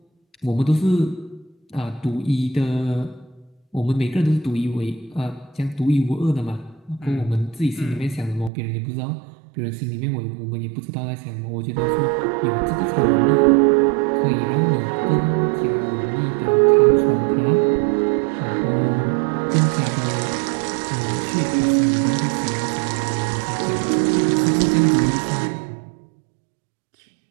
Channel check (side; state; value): left; drops out; at 8.5 s